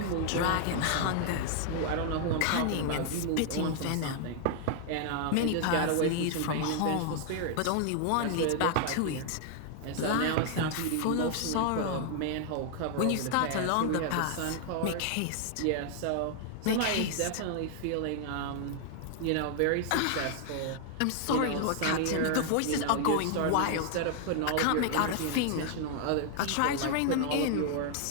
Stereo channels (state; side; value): different; both; correlation 0.00